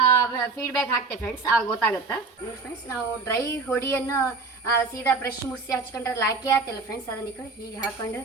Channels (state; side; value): quieter; left; 4.0 dB